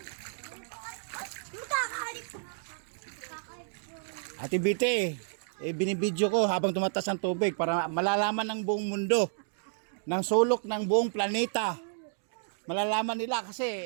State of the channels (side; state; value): left; silent; digital silence